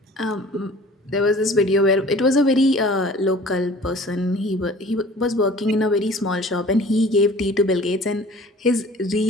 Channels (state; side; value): normal; both; correlation 0.47